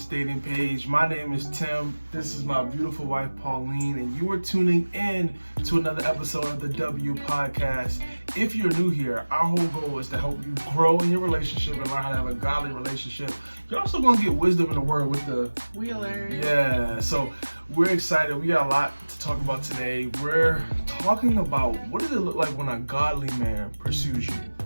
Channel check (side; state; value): both; inverted; correlation -1.00